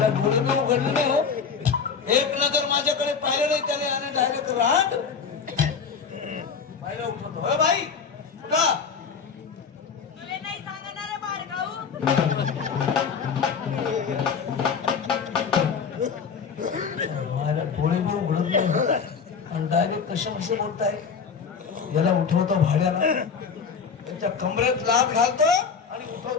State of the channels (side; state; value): right; quieter; 6.1 dB